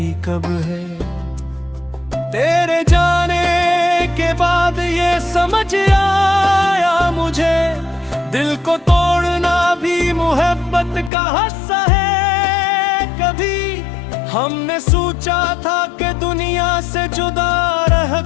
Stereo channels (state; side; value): drops out; right; at 11.1 s